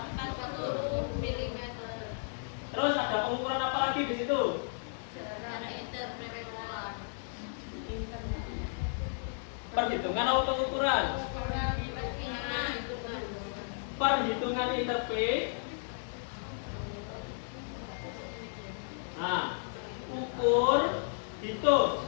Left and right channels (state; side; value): silent; right; digital silence